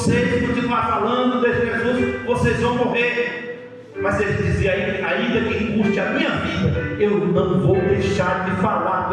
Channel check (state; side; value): identical; both; correlation 1.00